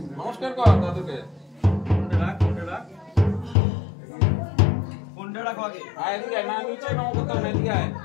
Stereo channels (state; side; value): drops out; right; at 3.6 s